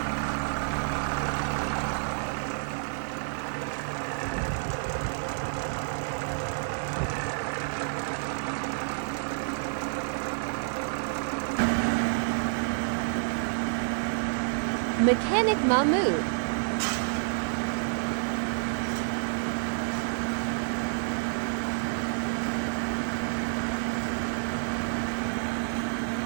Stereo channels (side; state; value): left; silent; digital silence